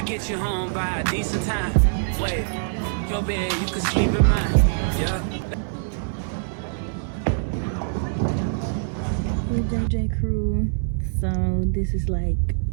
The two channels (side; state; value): left; silent; digital silence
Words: get you home by a decent time. Wait, your bed, you can sleep in mine. Yeah. Hey JJ crew. So this is like